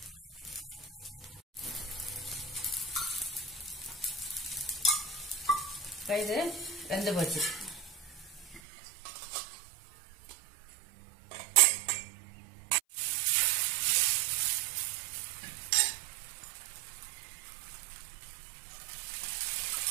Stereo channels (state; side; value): drops out; left; at 8.6 s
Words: இது வெந்து போச்சு.